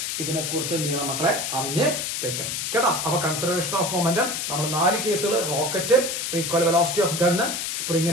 ഇതിനെ കുറിച്ച് എന്ത് ചെയ്യണം മക്കളെ? അറിഞ്ഞ് വെക്കണം, കേട്ടോ. അപ്പൊ കൺസർവേഷൻ ഓഫ് മൊമെന്റം നമ്മൾ 4 കേസുകൾ, rocket, recoil velocity of gun,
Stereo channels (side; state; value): left; noise; hiss, 2 dB below the sound